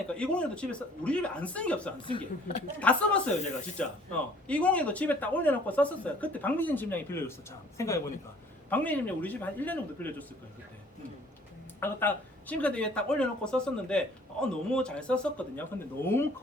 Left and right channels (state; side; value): normal; both; correlation 0.56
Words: 201도 집에 우리 집에 안 쓴 게 없어. 안 쓴 게 다 써봤어요 제가 진짜. 201도 집에 딱 올려놓고 썼었어요. 그때 박미진 집장이 빌려줬어. 참 생각해보니까 박미진 집장 우리 집에 한 1년 정도 빌려줬을 거예요 그때. 그래서 딱 싱크대 위에 딱 올려놓고 썼었는데 너무 잘 썼었거든요. 근데 너무